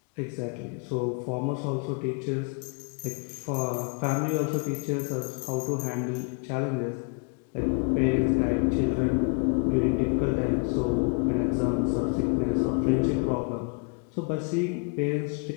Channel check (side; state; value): right; quieter; 35.8 dB